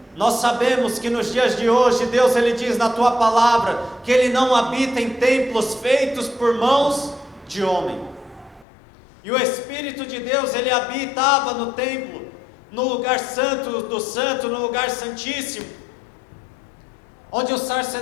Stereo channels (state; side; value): drops out; right; at 8.7 s